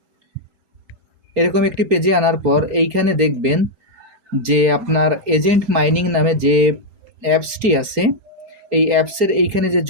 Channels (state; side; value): late; left; 4.6 ms